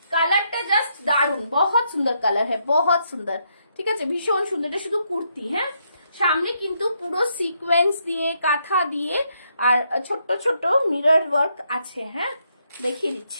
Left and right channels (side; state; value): both; inverted; correlation -0.77